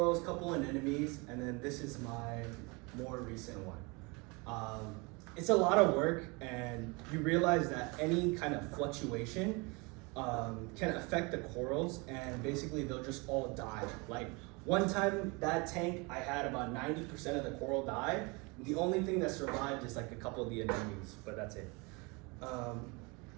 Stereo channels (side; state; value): left; quieter; 28.3 dB